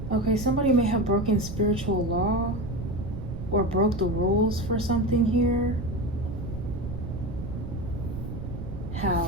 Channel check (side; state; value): right; noise; rumble, 8 dB below the sound